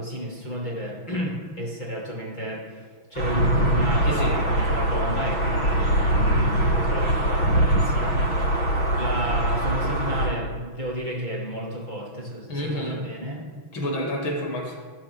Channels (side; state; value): right; late; 6.1 ms